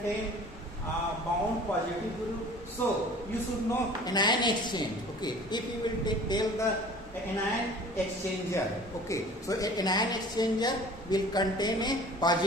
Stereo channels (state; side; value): normal; both; correlation 0.45